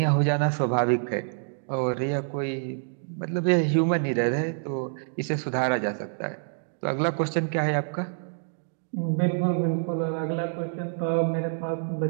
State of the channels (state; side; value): silent; left; digital silence